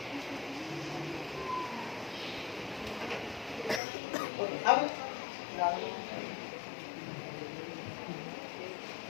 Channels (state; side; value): drops out; right; at 3.8 s